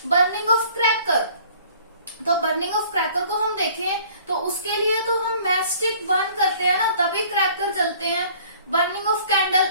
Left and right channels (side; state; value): both; inverted; correlation -0.54